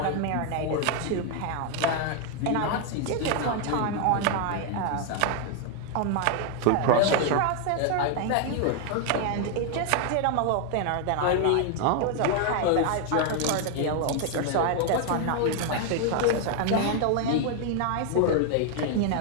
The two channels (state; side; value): different; both; correlation 0.00